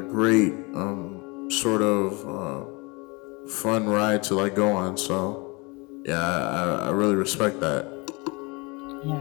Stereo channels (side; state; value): right; quieter; 27.6 dB